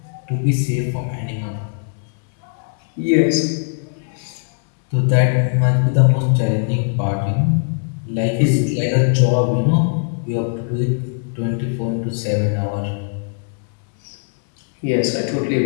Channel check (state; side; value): silent; right; 64 dB below the other